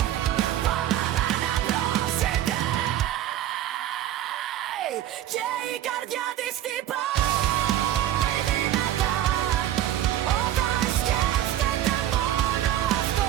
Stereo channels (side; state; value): left; quieter; 12.3 dB